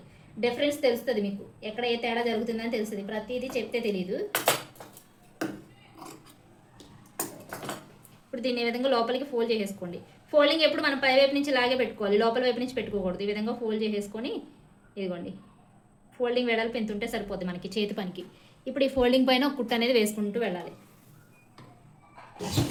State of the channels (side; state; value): both; identical; correlation 1.00